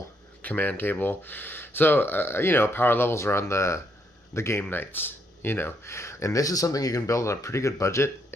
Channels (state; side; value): normal; both; correlation 0.75